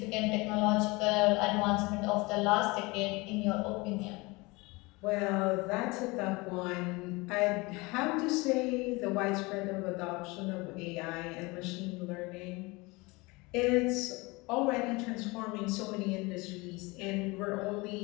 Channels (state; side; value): quieter; right; 24.6 dB